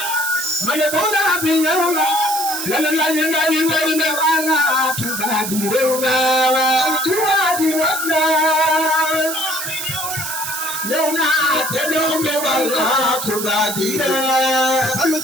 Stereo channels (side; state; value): right; noise; hiss, 5 dB below the sound